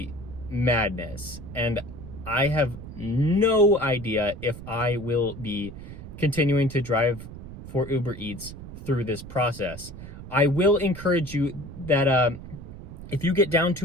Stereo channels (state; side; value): noise; right; rumble, 13 dB below the sound